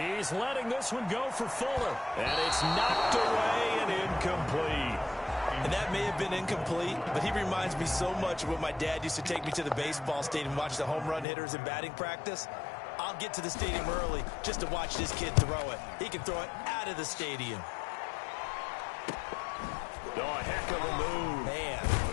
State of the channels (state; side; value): drops out; right; at 11.2 s